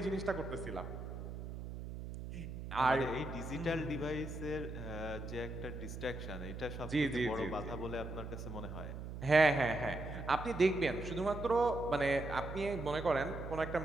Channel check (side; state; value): right; noise; hum, 8 dB below the sound